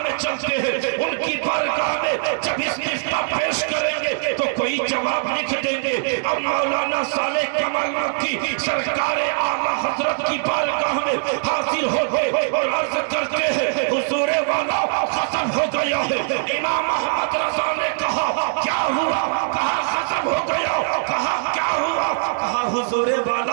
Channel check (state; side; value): silent; left; digital silence